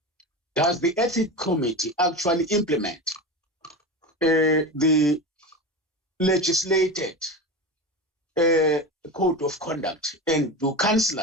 does the ethics committee actually implement the legislated code of conduct, and do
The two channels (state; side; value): normal; both; correlation 0.24